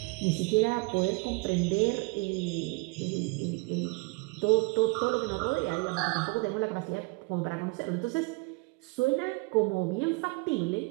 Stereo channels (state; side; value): quieter; left; 28.1 dB